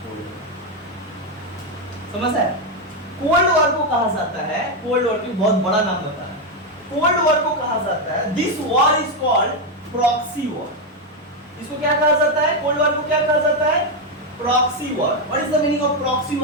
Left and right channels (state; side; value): normal; both; correlation 0.06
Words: कोल्ड वॉर। समझ है? कोल्ड वॉर को कहा जाता है, कोल्ड वॉर की बहुत बड़ा नाम होता है, कोल्ड वॉर को कहा जाता है, this war is called proxy war. इसको क्या कहा जाता है? कोल्ड वॉर को क्या कहा जाता है? Proxy war. What is the meaning of proxy